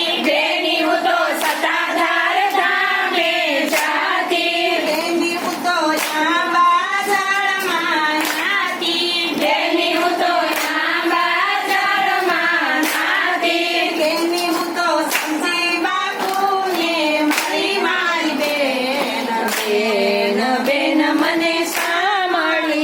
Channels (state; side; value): identical; both; correlation 1.00